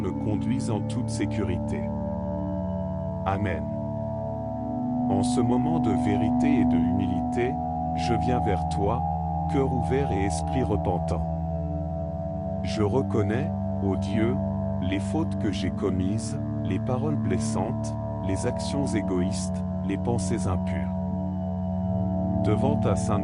conduise en toute sécurité. Amen. En ce moment de vérité et de humilité, je viens vers toi, cœur ouvert et esprit repentant. Je reconnais, ô Dieu, les fautes que j'ai commises, les paroles blessantes, les actions égoïstes, les pensées impures. Devant ta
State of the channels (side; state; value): both; identical; correlation 1.00